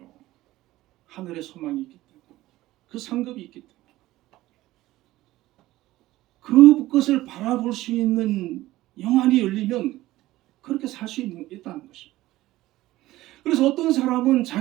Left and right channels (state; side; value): quieter; left; 16.7 dB